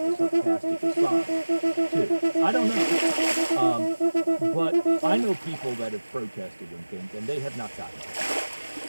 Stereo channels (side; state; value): both; inverted; correlation -1.00